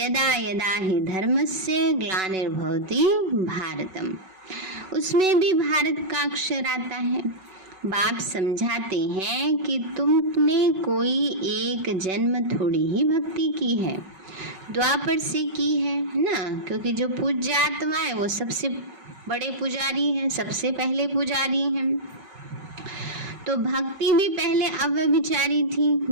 यदा हि धर्मस्य ग्लानिर्भवति भारतम, उसमें भी भारत का अक्षर आता है। बाप समझाते हैं कि तुमने कोई एक जन्म थोड़ी ही भक्ति की है, द्वापर से की है ना, क्योंकि जो पूज्य आत्मा है वो सबसे बड़े पुजारी हैं, सबसे पहले पुजारी हैं। तो भक्ति भी पहले अव्यभिचारी थी,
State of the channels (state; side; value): late; left; 5.3 ms